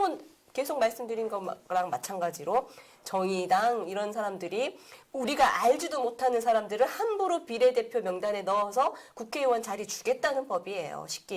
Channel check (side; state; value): both; identical; correlation 1.00